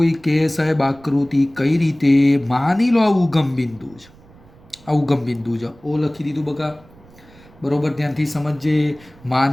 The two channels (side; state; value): right; noise; rumble, 25 dB below the sound